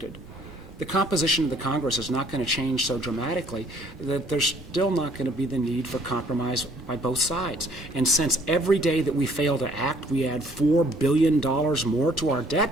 the composition of the Congress is not going to change so dramatically that there's still not going to be the need for compromise by both sides. And since every day that we fail to act, we add $4 billion more to our debt,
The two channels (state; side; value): normal; both; correlation 0.61